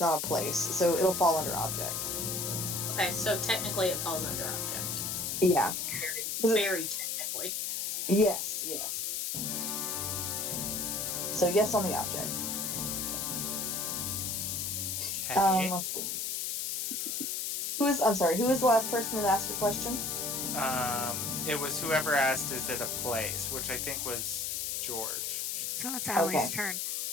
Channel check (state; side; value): noise; left; hiss, 1 dB below the sound